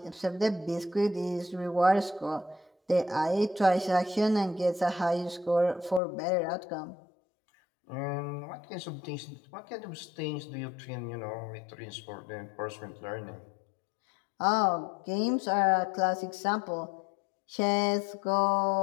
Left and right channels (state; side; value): drops out; right; at 6.0 s